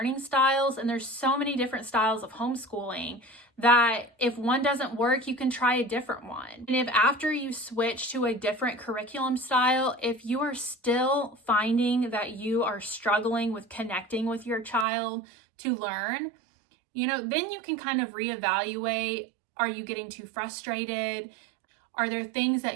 styles and there's so many different styles of homeschooling that if one doesn't work, you can try a different one. And if after you switch to a different curriculum style, if you are still finding that you are struggling with connecting with your child to learn, then you can kind of reevaluate. Are you getting too frustrated? Are there things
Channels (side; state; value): left; drops out; at 14.9 s